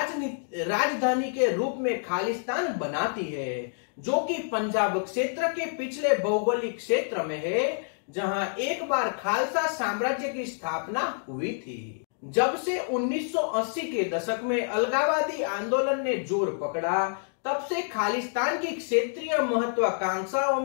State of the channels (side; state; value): right; silent; digital silence